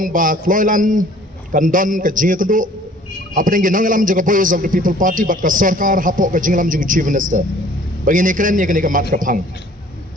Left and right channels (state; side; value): normal; both; correlation 0.53